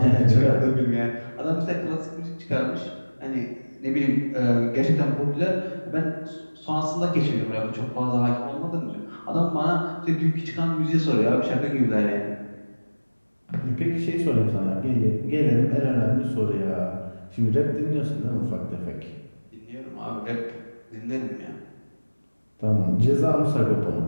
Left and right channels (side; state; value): both; inverted; correlation -1.00